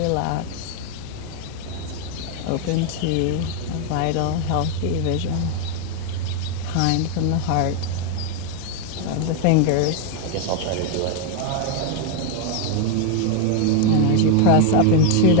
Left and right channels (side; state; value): both; different; correlation 0.01